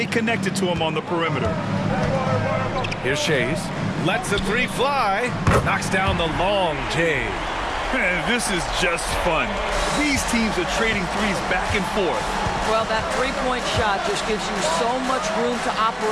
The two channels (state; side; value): identical; both; correlation 1.00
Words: connected to him on the perimeter. Here's Shays. Lets the 3 fly. Knocks down the long J. Man, this is just fun. These teams are trading threes back and forth. Well, that three-point shot just gives you so much room to